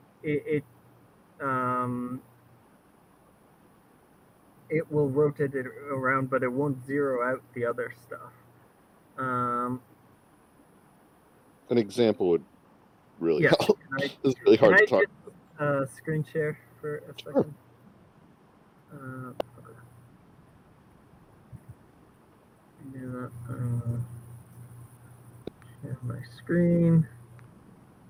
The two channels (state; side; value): identical; both; correlation 1.00